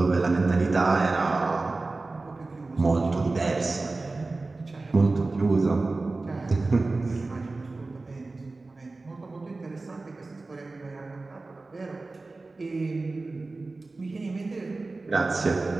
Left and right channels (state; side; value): quieter; left; 3.4 dB